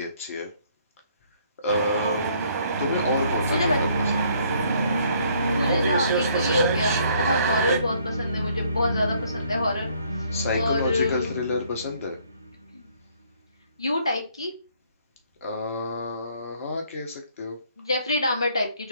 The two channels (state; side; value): inverted; both; correlation -0.65